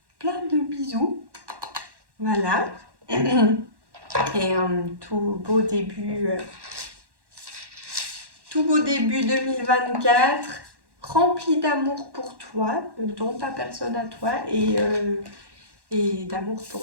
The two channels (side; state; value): left; late; 1.1 ms